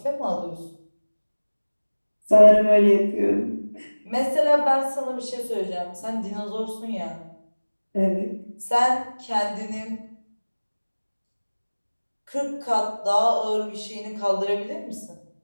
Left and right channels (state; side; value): inverted; both; correlation -1.00